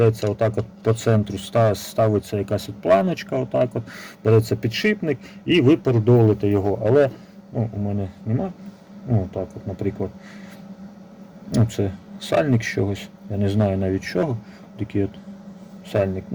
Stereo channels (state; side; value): identical; both; correlation 1.00